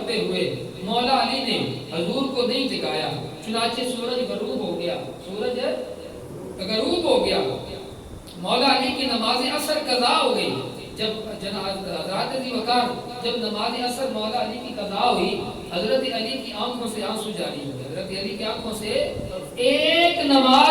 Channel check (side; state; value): both; identical; correlation 1.00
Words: ہوئے مولا علی نے حضور کو نہیں جگایا، چنانچہ سورج غروب ہو گیا، سورج غروب ہو گیا، مولا علی کی نماز عصر قضا ہو گئی۔ جب حضرت ابی بکر جب نماز عصر مولا علی کی قضا ہوئی، حضرت علی کی آنکھوں سے آنسو جاری ہو گئے، حضرت علی کی آنکھوں سے ایک